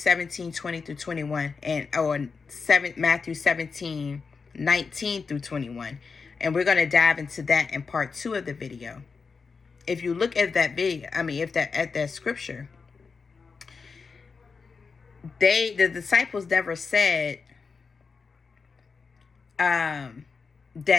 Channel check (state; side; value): quieter; right; 5.0 dB